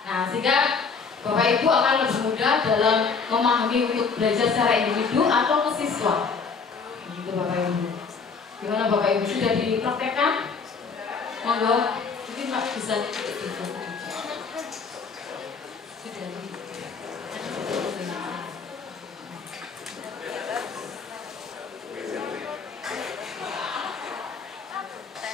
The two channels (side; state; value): right; quieter; 5.2 dB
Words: Nah, sehingga Bapak Ibu akan lebih mudah dalam memahami untuk belajar secara individu atau ke siswa. Begitu Bapak Ibu. Gimana Bapak Ibu, sudah dipraktekkan? Monggo, mungkin Pak bisa sudah.